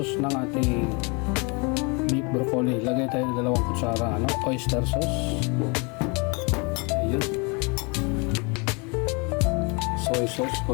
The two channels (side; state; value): right; quieter; 31.3 dB